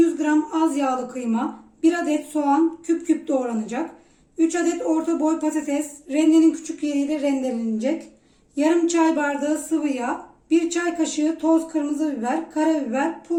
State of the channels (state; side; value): identical; both; correlation 1.00